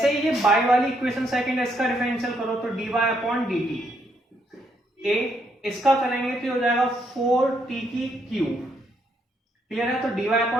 ही ये बाय वाली इक्वेशन सेकंड इसका डिफरेंशियल करो तो dy अपॉन dt, a इसका करेंगे तो हो जाएगा 4t की क्यूब। क्लियर है। तो dy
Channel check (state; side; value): normal; both; correlation 0.74